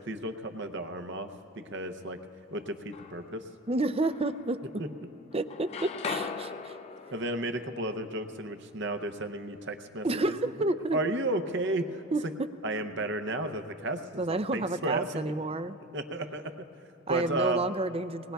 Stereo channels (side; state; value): both; normal; correlation 0.32